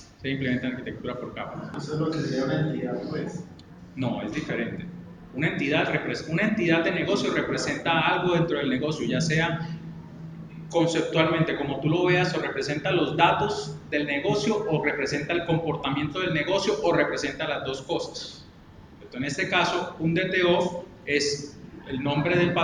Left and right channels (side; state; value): both; identical; correlation 1.00